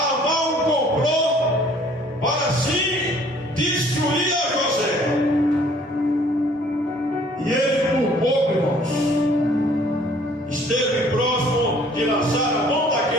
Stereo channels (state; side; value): normal; both; correlation 0.57